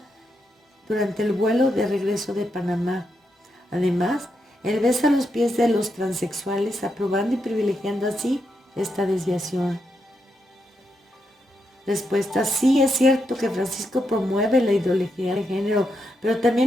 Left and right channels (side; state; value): both; normal; correlation 0.83